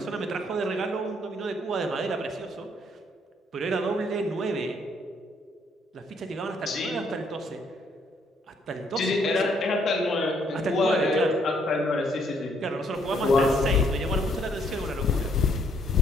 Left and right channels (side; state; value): both; normal; correlation 0.68